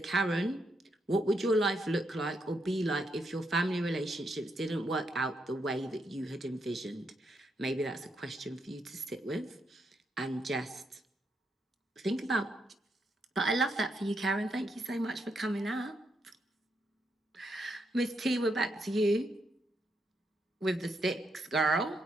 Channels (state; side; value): normal; both; correlation 0.79